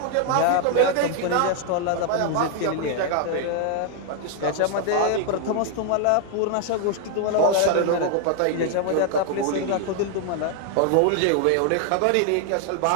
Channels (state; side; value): different; both; correlation 0.00